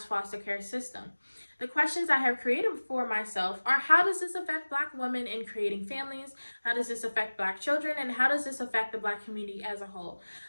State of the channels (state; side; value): inverted; both; correlation -1.00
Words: foster care system. The questions I have created for myself are: how does this affect Black women in creating families? How does this affect Black children? And how does this affect the Black community as a whole?